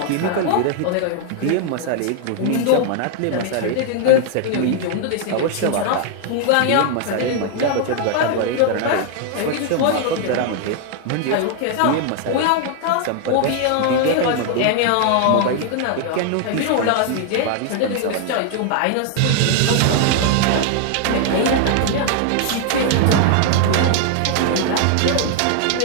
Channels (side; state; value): both; different; correlation 0.00